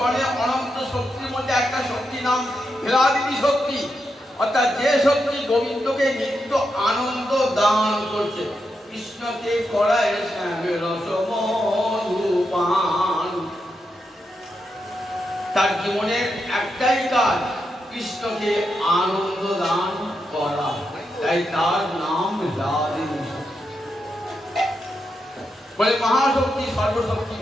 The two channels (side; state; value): both; normal; correlation 0.85